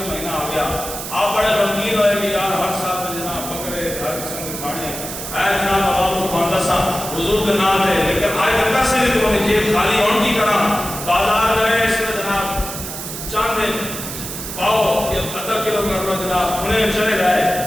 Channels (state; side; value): noise; right; hiss, 8 dB below the sound